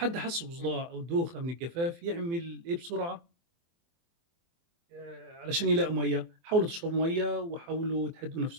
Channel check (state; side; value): late; left; 24 ms